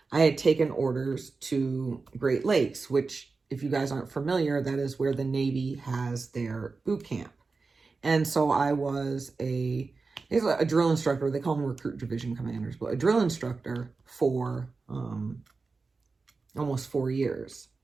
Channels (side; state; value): left; quieter; 4.2 dB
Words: I had taken orders to Great Lakes, which, if you guys aren't familiar, that is where the Navy has their boot camp. And so I was a drill instructor. They call them recruit division commanders, but a drill instructor for almost 4 years.